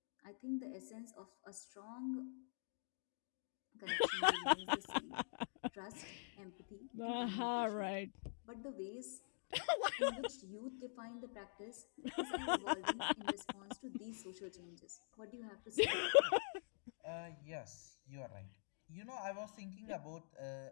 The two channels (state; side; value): silent; right; digital silence